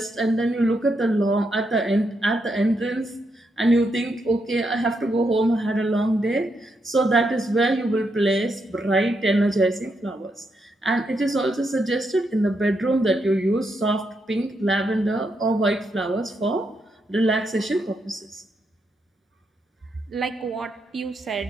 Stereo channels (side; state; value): both; normal; correlation 0.81